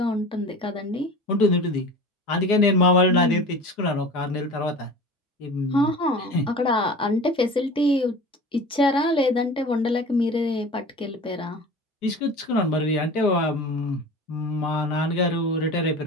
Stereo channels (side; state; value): both; normal; correlation 0.37